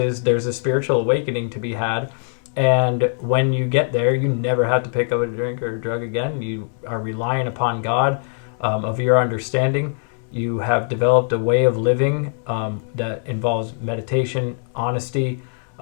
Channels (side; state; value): right; silent; digital silence